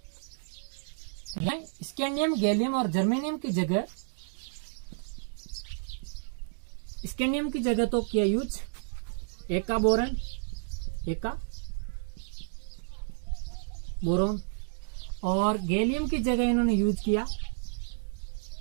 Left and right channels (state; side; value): silent; left; digital silence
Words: स्कैंडियम, गैलियम और जर्मेनियम की जगह, स्कैंडियम की जगह तो किया यूज एका बोरोन, और गैलियम की जगह इन्होंने यूज किया